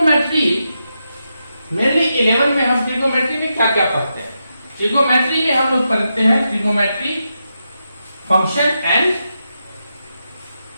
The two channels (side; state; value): both; inverted; correlation -0.86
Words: मेनली 11 में हम ट्रिगोमेट्री में क्या क्या पढ़ते हैं। ट्रिगोमेट्री में हम लोग पढ़ते हैं trigonometry function and